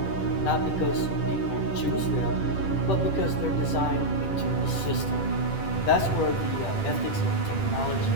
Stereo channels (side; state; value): right; late; 10 ms